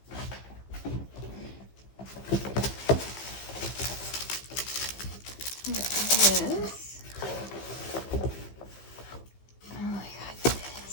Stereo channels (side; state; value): right; late; 15 ms